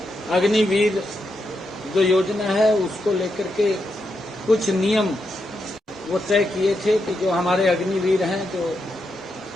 अग्निवीर जो योजना है उसको लेकर के कुछ नियम वो तय किए थे कि जो हमारे अग्निवीर हैं जो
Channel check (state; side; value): normal; both; correlation 0.84